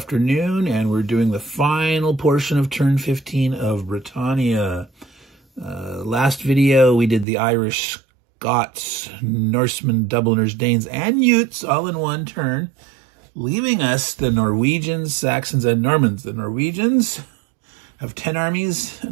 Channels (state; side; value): drops out; left; at 7.2 s